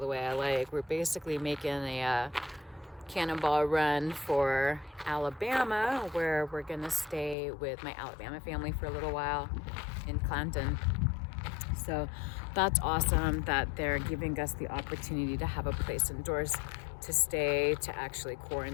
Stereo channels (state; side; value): drops out; right; at 7.4 s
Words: way I like. We're basically making a cannonball run for Alabama, where we're gonna stay with my Alabama family for a little while in Clanton. So that's awesome that they're giving us the opportunity to have a place indoors to stay, to actually